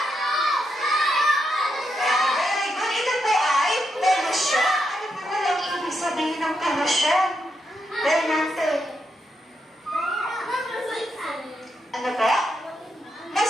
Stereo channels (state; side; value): normal; both; correlation 0.82